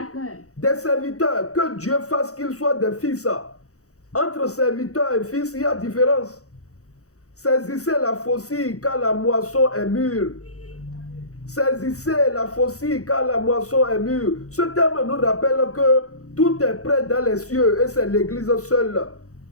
Des serviteurs, que Dieu fasse qu'ils soient des fils. Entre serviteurs et fils, il y a différence. Saisissez la faucille car la moisson est mûre. Saisissez la faucille car la moisson est mûre. Ce terme nous rappelle que tout est prêt dans les cieux et c'est l'église seule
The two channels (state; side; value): late; right; 0.65 ms